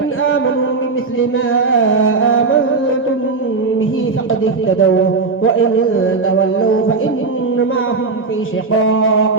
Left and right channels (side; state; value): left; quieter; 4.2 dB